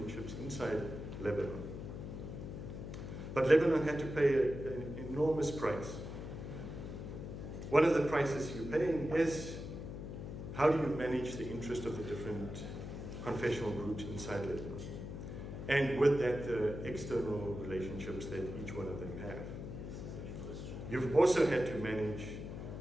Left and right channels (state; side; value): noise; left; hum, 8 dB below the sound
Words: inside Lebanon. But Lebanon had to pay an enormous price. One of the prices you're paying is how do you manage the interest of the different confessional groups inside Lebanon? And with that, the external relationships that each one of them have. You've also had to manage